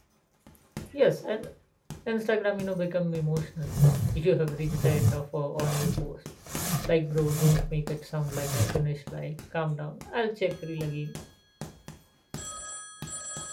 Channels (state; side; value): identical; both; correlation 1.00